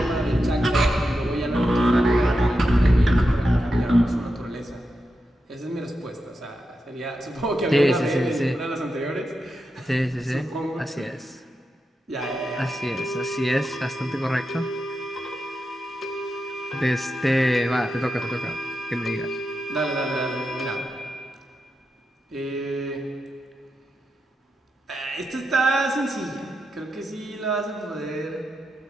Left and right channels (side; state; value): both; normal; correlation 0.88